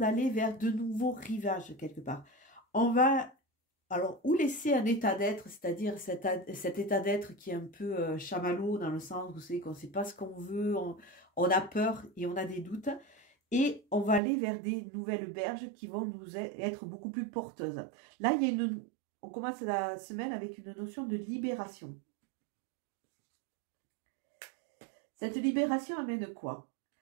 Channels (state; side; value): drops out; left; at 14.2 s